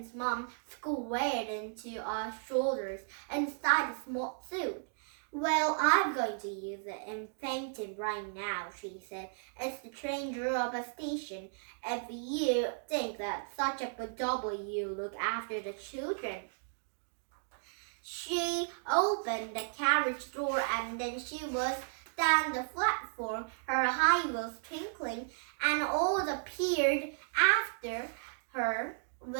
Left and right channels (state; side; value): silent; left; digital silence